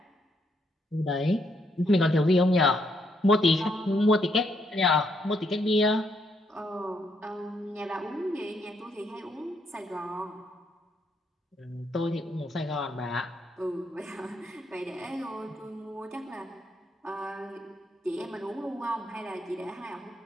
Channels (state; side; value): normal; both; correlation 0.75